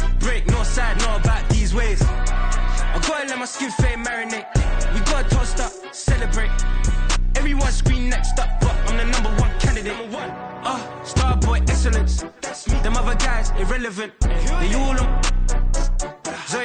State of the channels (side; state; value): both; identical; correlation 1.00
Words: break, no side, know about these ways. I gotta let my skin fade marinate. We gotta toast up, celebrate. Everyone scream next up, but I'm the #1 candidate. Starboy excellence. That's me. Them other guys irrelevant. They all on.